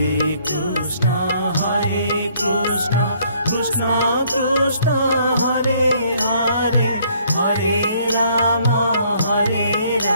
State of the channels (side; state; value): both; inverted; correlation -0.64